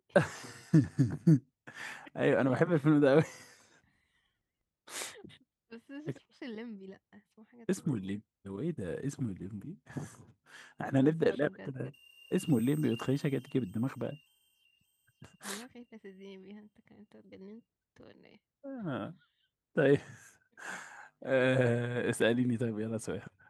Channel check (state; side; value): identical; both; correlation 1.00